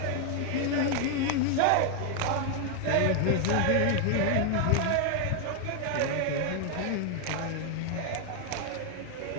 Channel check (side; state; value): both; different; correlation 0.00